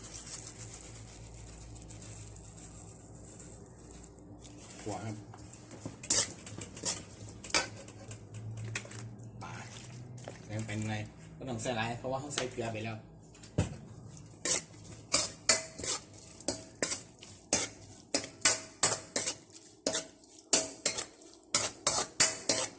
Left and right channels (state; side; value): identical; both; correlation 1.00